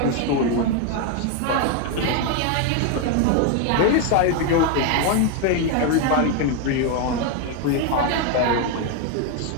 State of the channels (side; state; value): both; different; correlation 0.01